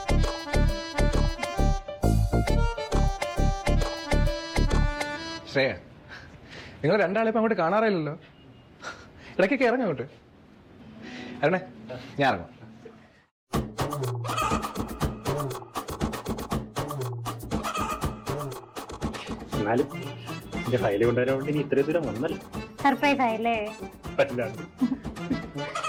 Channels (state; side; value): identical; both; correlation 1.00